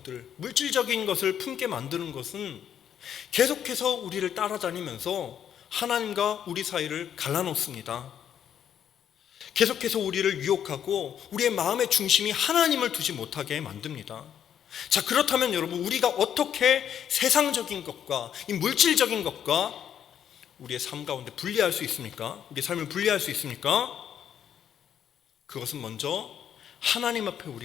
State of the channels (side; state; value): right; quieter; 9.2 dB